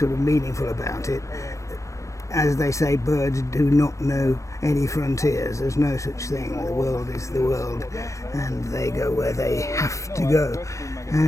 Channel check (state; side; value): late; right; 0.15 ms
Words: of meaningful about it, as they say, birds do not know any frontiers. There's no such thing. The world is the world, and they go where they have to go.